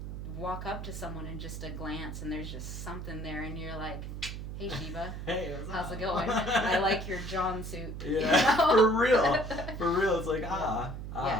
walk up to someone in just a glance, and there's just something there, and you're like, hey, Shiva. Hey, how's it going? I like your John suit. Yeah, for real. It's like,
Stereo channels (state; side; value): noise; right; hum, 7 dB below the sound